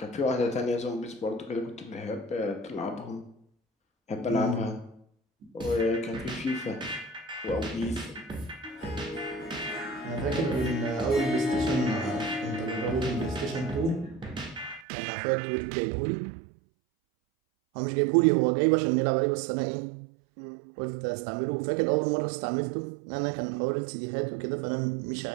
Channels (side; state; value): left; drops out; at 14.9 s